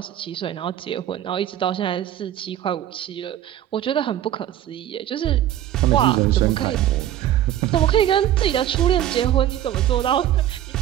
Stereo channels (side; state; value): left; quieter; 11.9 dB